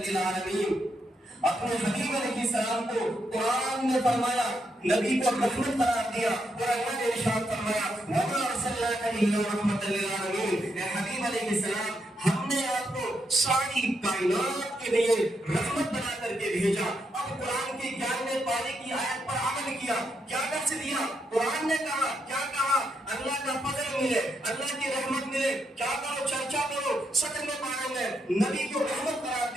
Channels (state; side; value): normal; both; correlation 0.80